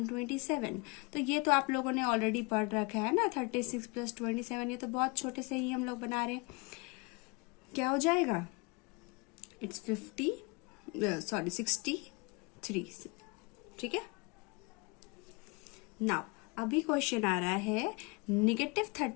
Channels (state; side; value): quieter; right; 29.0 dB